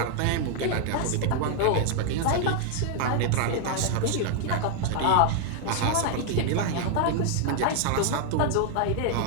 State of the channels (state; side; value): different; both; correlation 0.00